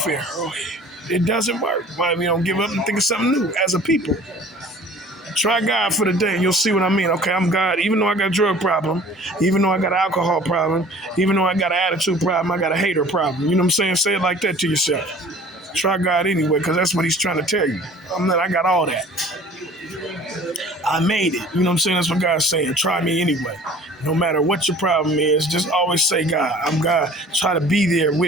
It doesn't work. Why we don't give up and think of something new as a people? Try God for the day and you'll see what I mean. Okay, I'm God. Even though I got a drug problem, even though I got an alcohol problem, even though I got an attitude problem, I got a hater problem. You know what I'm saying? Say it like that to yourself. Try God anyway, because that's what he's trying to tell you. I got all that. I made it. You know what I'm saying? That's what God's saying. Try me anyway. No matter what your problem is, just always say, God, I'm God. Try to be there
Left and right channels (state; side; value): normal; both; correlation 0.48